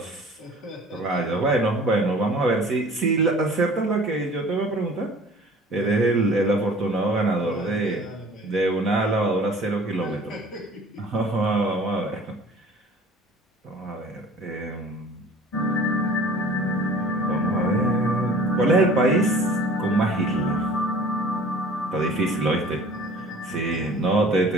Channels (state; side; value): normal; both; correlation 0.47